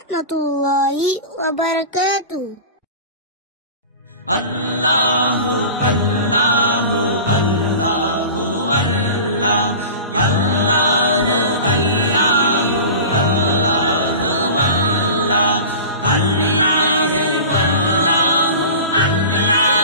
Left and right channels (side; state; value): both; inverted; correlation -0.35